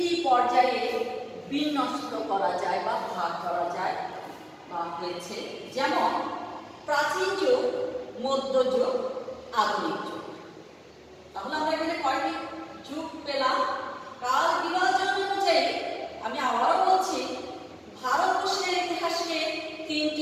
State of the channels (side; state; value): both; identical; correlation 1.00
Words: পর্যায়ে বিন্যস্ত করা যায় বা ভাগ করা যায় বা হয়েছে, যেমন প্রাচীন যুগ, মধ্যযুগ, আধুনিক যুগ। তাহলে আমরা এখানে কয়টি যুগ পেলাম? কাল বিভাজন অনুযায়ী আমি আবারও বলছি, ভারতবর্ষের ইতিহাসকে